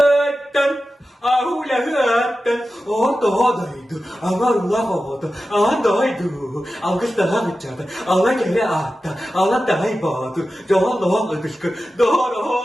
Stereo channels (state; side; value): normal; both; correlation 0.93